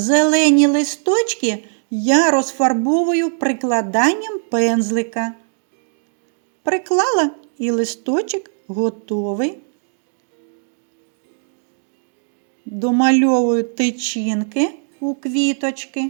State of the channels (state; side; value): silent; left; digital silence